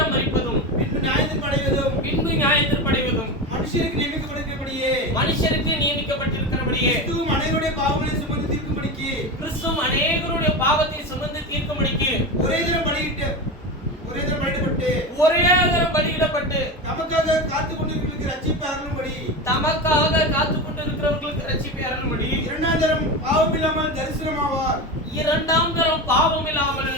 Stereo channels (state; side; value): normal; both; correlation 0.22